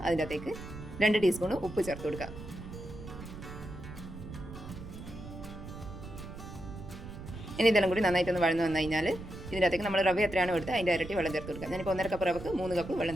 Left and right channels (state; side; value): noise; right; rumble, 12 dB below the sound